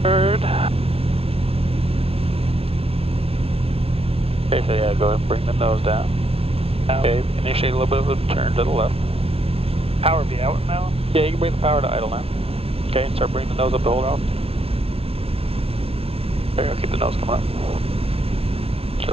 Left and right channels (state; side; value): late; left; 0.28 ms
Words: Third. Okay, so yeah, go ahead and bring the nose down. Okay, initiate a little bit of a turn to the left. Power be out now? Yeah, you can bring the power to idle now. Okay, and start bringing the nose up to hold out. There you go, keep the nose coming up.